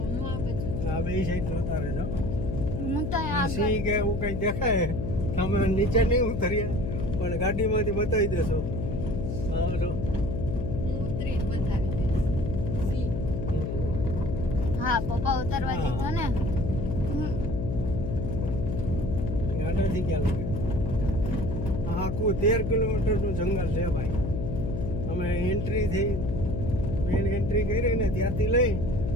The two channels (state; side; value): noise; left; hum, 3 dB below the sound